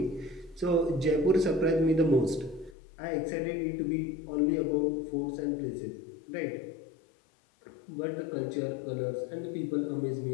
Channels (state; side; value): drops out; right; at 2.8 s